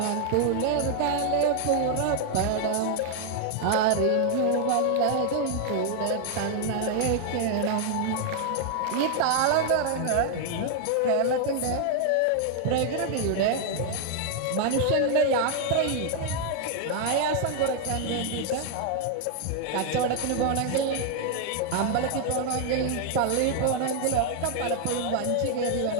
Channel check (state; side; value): different; both; correlation 0.00